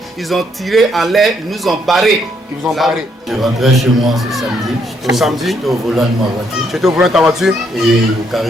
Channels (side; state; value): both; normal; correlation 0.72